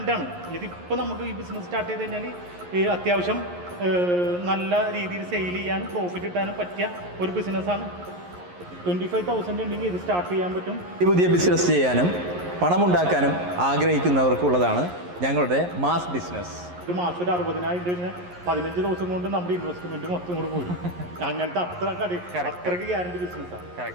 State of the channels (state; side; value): late; left; 11 ms